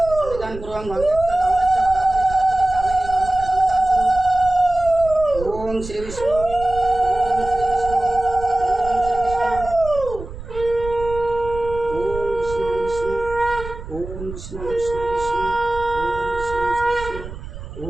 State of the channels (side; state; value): right; noise; rumble, 12 dB below the sound